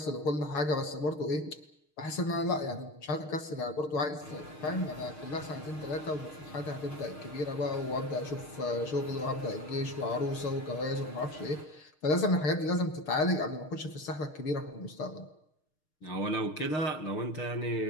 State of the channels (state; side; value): late; right; 6.5 ms